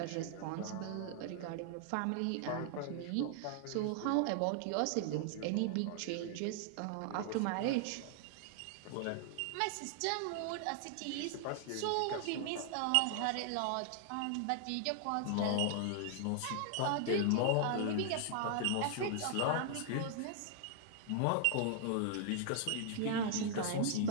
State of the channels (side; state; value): both; different; correlation 0.00